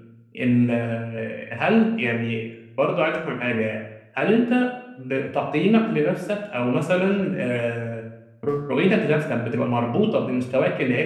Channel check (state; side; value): identical; both; correlation 1.00